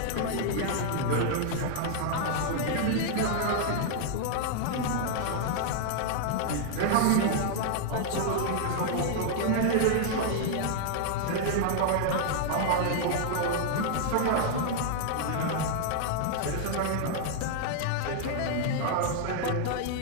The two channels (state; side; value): different; both; correlation 0.00